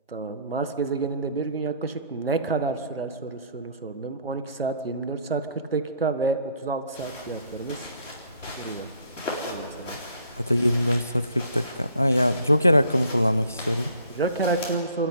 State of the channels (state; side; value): inverted; both; correlation -0.59